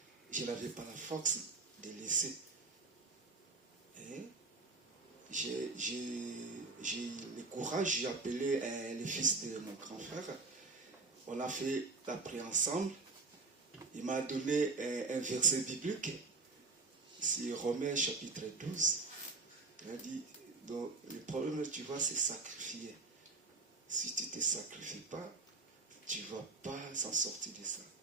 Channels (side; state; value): left; quieter; 3.9 dB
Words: je n'avais pas la force de laisser. Et j'ai le courage, j'ai appelé le fils de mon grand frère. On a fait la prière ensemble. Il m'a donné un verset biblique. C'est Romains chapitre 12. Il a dit, donc, le problème, tu vois, c'est sacrifier. Si tu ne te sacrifies pas, tu ne vas pas s'en sortir de ça.